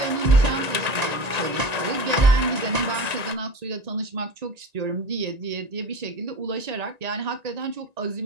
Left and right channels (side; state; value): left; late; 1.9 ms